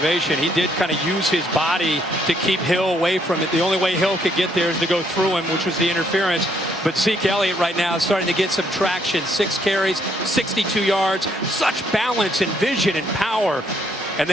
He did kind of use his body to keep Hill away from it. The only way Hill could get there is to go through him, which was the interference. But Zeke Elliott right now is starting to get some traction. 6 carries, 62 yards, such balance and vision and power. And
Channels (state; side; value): normal; both; correlation 0.70